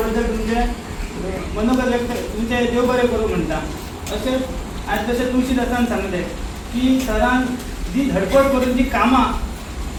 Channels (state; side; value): identical; both; correlation 1.00